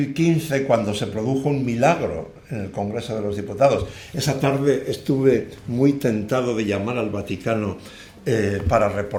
cuando se produjo un milagro en el Congreso de los Diputados. Esa tarde estuve muy tentado de llamar al Vaticano para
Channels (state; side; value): identical; both; correlation 1.00